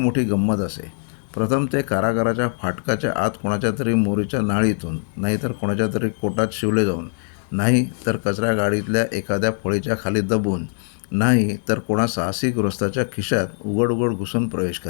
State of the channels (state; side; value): silent; right; 64 dB below the other